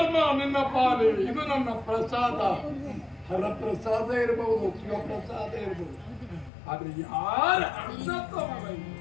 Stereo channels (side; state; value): right; drops out; at 6.5 s